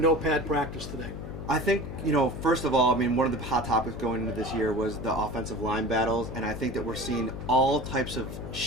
practice today? I think, first of all, one of the hot topics going into this year was the offensive line battles, and I think that we're seeing all types of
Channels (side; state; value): left; noise; hum, 9 dB below the sound